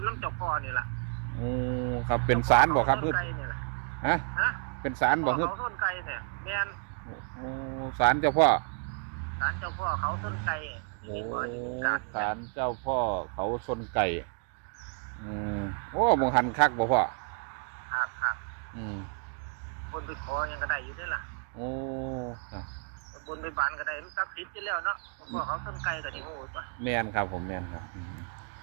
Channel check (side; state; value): left; quieter; 37.9 dB